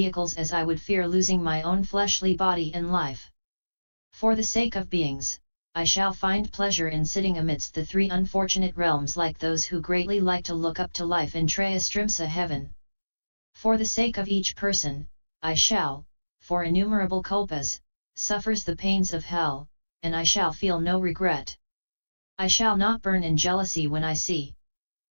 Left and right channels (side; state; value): both; inverted; correlation -1.00